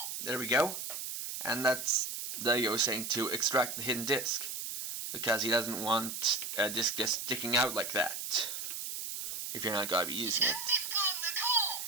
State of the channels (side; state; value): right; noise; hiss, 5 dB below the sound